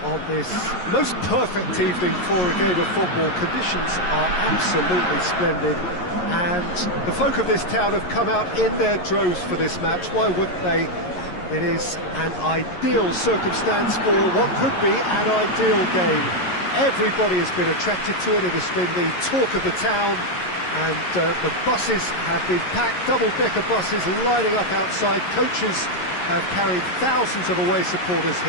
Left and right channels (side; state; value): right; late; 11 ms